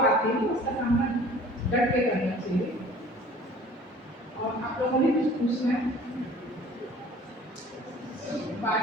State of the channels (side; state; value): both; normal; correlation 0.48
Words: आती है उसका सामना डट के करना चाहिए। और आप लोगों ने कुछ पूछना है, बात